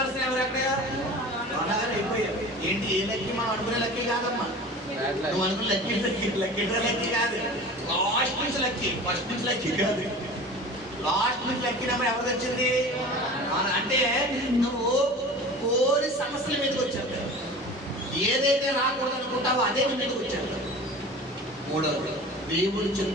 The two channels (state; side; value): normal; both; correlation 0.38